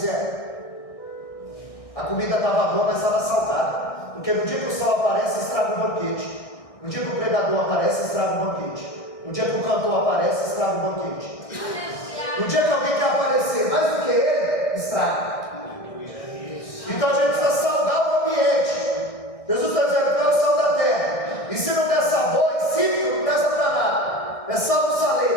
a comida estava boa, mas estava salgada. Porque no dia que o sal aparece, estraga o banquete. No dia que o pregador aparece, estraga o banquete. No dia que o cantor aparece, estraga o banquete. No dia que alguém quer aparecer mais do que ele, estraga. Então a gente precisa salgar o ambiente. Jesus está dizendo que é o sal da terra. E se não der sabor, insípido, não presta para nada. É sal do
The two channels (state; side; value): late; right; 1.6 ms